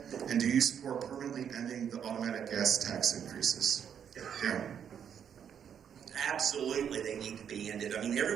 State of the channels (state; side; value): quieter; left; 8.3 dB